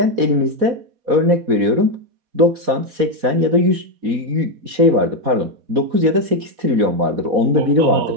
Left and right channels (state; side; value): late; left; 4.1 ms